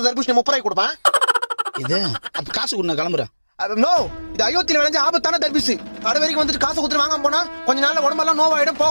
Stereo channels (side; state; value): both; inverted; correlation -1.00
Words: தர்பூசணி 30 ரூபாய்க்கு கொடுப்பேன். இது அப்ப காசு கொடு, நான் கிளம்புறேன். நோ இது அயோத்தியில விளைஞ்ச ஆபத்தான தர்பூசணி. கடை வரைக்கும் வந்துட்டு காசு கொடுத்து வாங்காம போனா கொஞ்ச நாள்ல உடம்பெல்லாம் நோவாயிடும்,